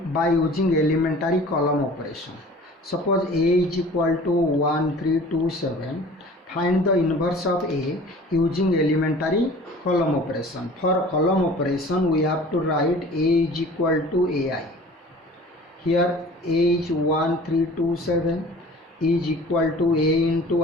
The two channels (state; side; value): normal; both; correlation 0.45